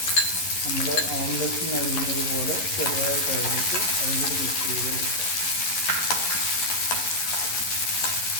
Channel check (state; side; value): late; right; 11 ms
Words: നമ്മൾ ഓംലെറ്റിന് അരിഞ്ഞത് പോലെ ചെറുതായിട്ട് അരിഞ്ഞിട്ട് അതിലൂടെ മിക്സ് ചെയ്ത് കൊടുക്കുക.